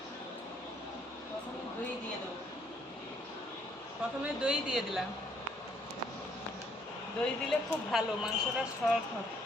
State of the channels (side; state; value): both; normal; correlation 0.67